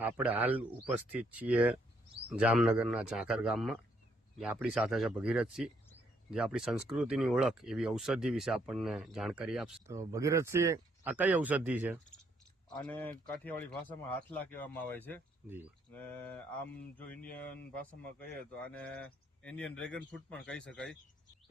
આપણે હાલ ઉપસ્થિત છીએ જામનગરના ઝાંખર ગામમાં, જે આપણી સાથે છે ભગીરથસિંહ, જે આપણી સંસ્કૃતિની ઓળખ એવી ઔષધિ વિશે આપણને જાણકારી આપશે. તો ભગીરથસિંહ, આ કઈ ઔષધિ છે? આને કાઠિયાવાડી ભાષામાં હાથલા કહેવામાં આવે છે. જી. ને આમ જો ઇન્ડિયન ભાષામાં કહીએ તો આને ઇન્ડિયન ડ્રેગન ફ્રૂટ પણ કહી શકાય.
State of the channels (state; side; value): normal; both; correlation 0.71